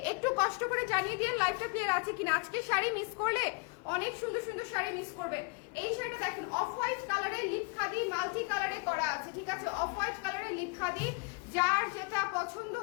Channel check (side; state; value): right; quieter; 31.8 dB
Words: একটু কষ্ট করে জানিয়ে দিয়ে লাইভটা ক্লিয়ার আছে কিনা। আজকে শাড়ি মিস করলে অনেক সুন্দর সুন্দর শাড়ি মিস করবে। এই শাড়িটা দেখেন অফ হোয়াইট কালারের লিপ খাদি মাল্টি কালারে করা আছে, ঠিক আছে, অফ হোয়াইট কালারের লিপ খাদি। যার যেটা পছন্দ